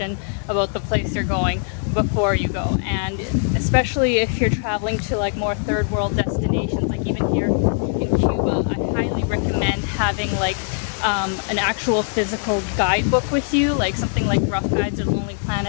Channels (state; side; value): silent; right; 65 dB below the other